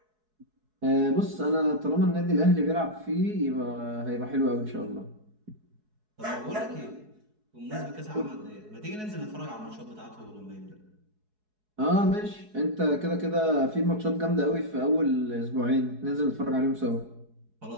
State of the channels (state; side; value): late; left; 4.7 ms